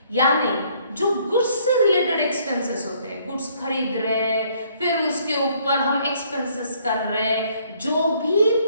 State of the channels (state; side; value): inverted; both; correlation -0.64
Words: यानी जो गुड्स से रिलेटेड एक्सपेंसेस होते हैं, गुड्स खरीद रहे, फिर उसके ऊपर हम एक्सपेंसेस कर रहे, जो भी